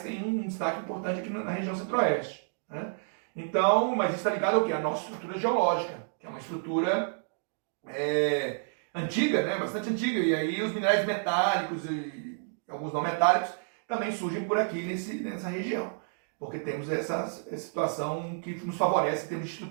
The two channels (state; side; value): silent; left; digital silence